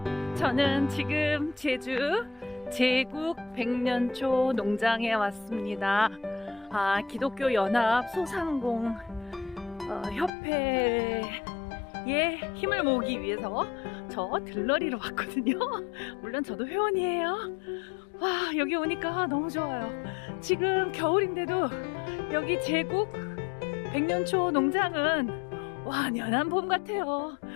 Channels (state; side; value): drops out; right; at 10.3 s